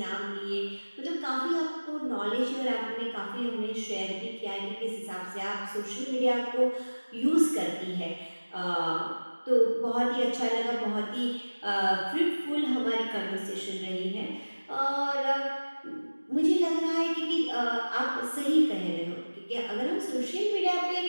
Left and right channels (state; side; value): inverted; both; correlation -1.00